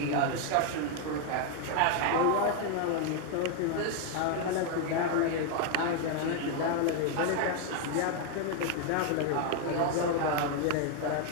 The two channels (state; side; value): different; both; correlation 0.01